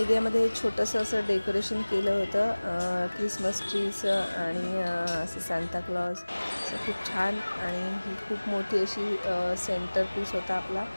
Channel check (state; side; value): inverted; both; correlation -1.00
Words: छोटंसं असं डेकोरेशन केलं होतं. क्रिसमस ट्रीचं आणि असं सांता क्लॉज असं खूप छान. आणि ही खूप मोठी अशी सेंटर पीस होता आपला.